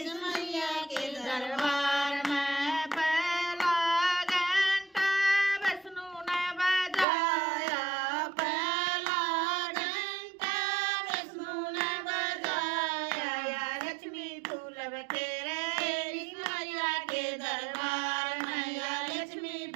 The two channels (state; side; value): drops out; left; at 7.1 s